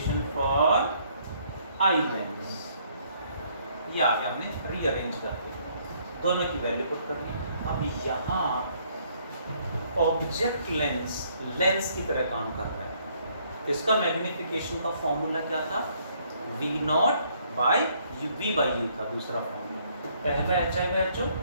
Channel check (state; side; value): inverted; both; correlation -0.66